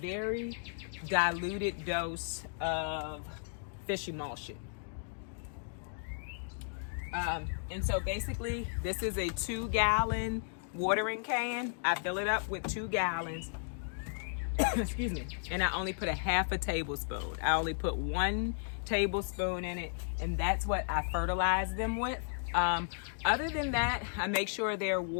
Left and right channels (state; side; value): silent; right; digital silence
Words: diluted dose of fish emulsion. And so basically this is a 2-gallon watering can. I fill it up with 2 gallons. Excuse me. And I only put a half a tablespoon. I only put 1 tablespoon in it, and that's what I fertilize them with. Other than that, I make sure they're